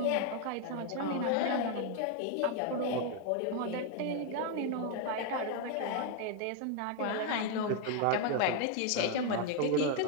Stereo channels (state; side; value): different; both; correlation 0.01